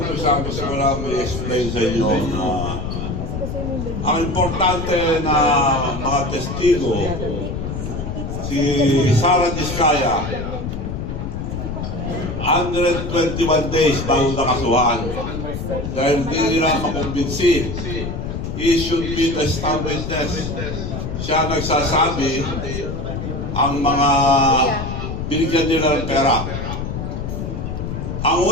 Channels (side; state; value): left; noise; rumble, 5 dB below the sound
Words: gusto ko lang i-explain sa inyo na ang importante na mga testigo, si Sara Diskaya, 121 days bago nakasuhan. Dahil hindi nila makumbinsi. He should be the star witness. Siya nagsasabi ang mga binigyan nila ng pera. Ang